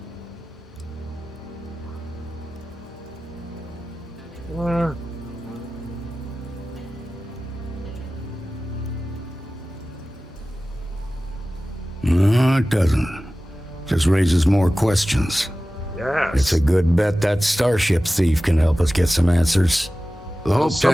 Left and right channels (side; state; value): both; normal; correlation 0.96